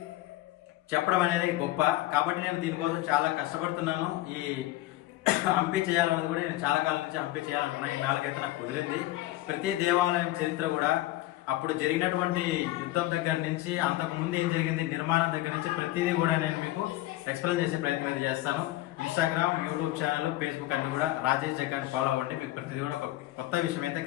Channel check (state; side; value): quieter; right; 16.7 dB